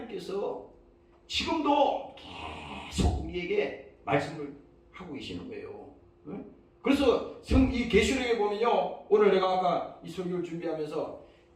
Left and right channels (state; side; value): identical; both; correlation 1.00